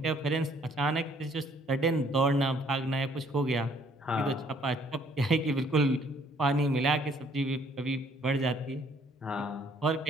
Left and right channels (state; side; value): normal; both; correlation 0.62